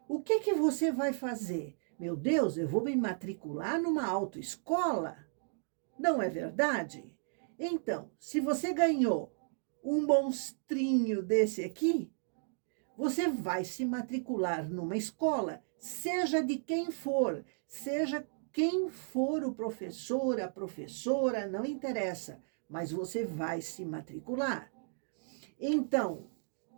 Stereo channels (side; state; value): left; silent; digital silence